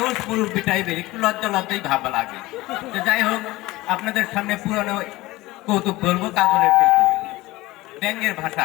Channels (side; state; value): right; quieter; 19.3 dB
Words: মুরব্বী টাইপের একটু লজ্জা লজ্জাই ভাবা লাগে। তো যাই হোক, আপনাদের সামনে পুরানো কৌতুক বলবো, কাজলের কৌতুক। ব্যাঙের